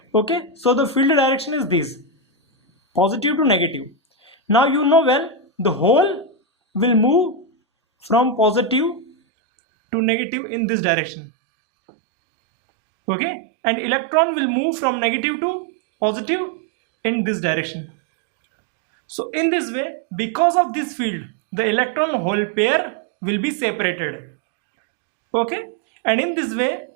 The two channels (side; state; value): left; drops out; at 9.1 s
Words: Okay, so the field direction is this, positive to negative. Now you know well the hole will move from positive to negative in this direction. Okay, and electron will move from negative to positive in this direction. So in this way, because of this field, the electron hole pair will be separated. Okay, and in this way,